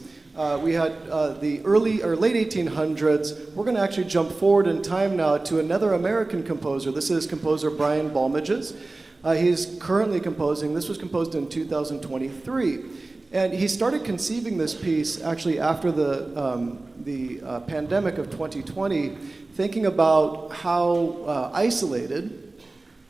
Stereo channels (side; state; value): left; quieter; 3.2 dB